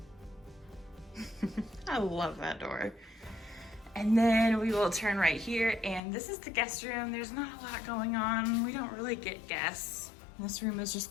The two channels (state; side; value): drops out; right; at 6.0 s